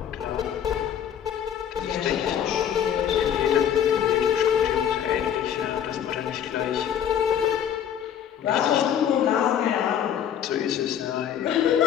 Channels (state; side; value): quieter; right; 9.3 dB